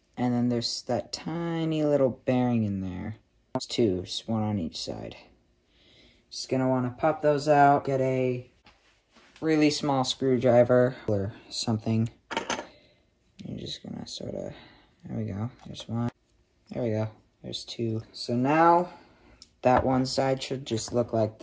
And then there's that tiny little bearing in there. There's two, just one on each side. Just going to want to pop those out. Get a really small screwdriver or something. You're just gonna sort of, there we go, there's one, there we go, there's two. So now, that one side should just look like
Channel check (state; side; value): identical; both; correlation 1.00